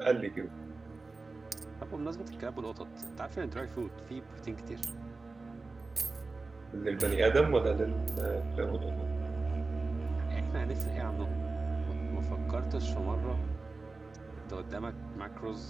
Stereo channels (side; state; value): left; quieter; 3.7 dB